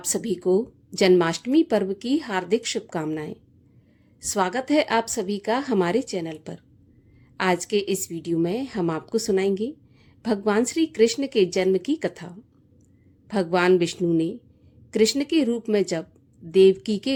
सभी को जन्माष्टमी पर्व की हार्दिक शुभकामनाएं। स्वागत है आप सभी का हमारे चैनल पर। आज के इस वीडियो में हम आपको सुनाएंगे भगवान श्री कृष्ण के जन्म की कथा। भगवान विष्णु ने कृष्ण के रूप में जब देवकी के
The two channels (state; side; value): identical; both; correlation 1.00